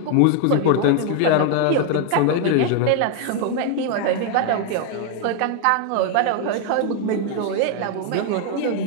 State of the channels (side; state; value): both; different; correlation 0.01